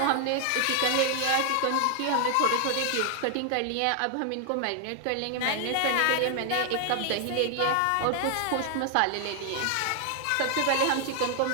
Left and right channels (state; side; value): different; both; correlation 0.00